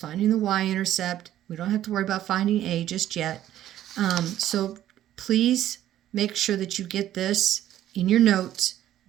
the y-intercept. We don't have to worry about finding a just yet. So please make sure that you get this in your notes,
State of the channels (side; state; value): left; quieter; 12.4 dB